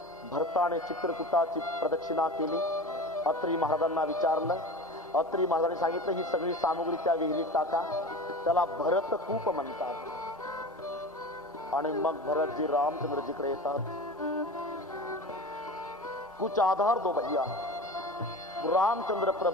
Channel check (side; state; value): both; normal; correlation 0.33